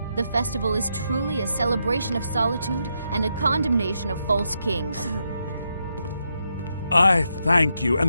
The festival is truly a celebration of solitude and a condemnation of false kings. I thank you, and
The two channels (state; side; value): inverted; both; correlation -0.82